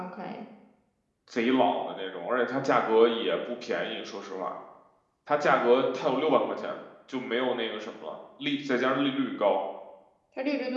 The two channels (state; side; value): identical; both; correlation 1.00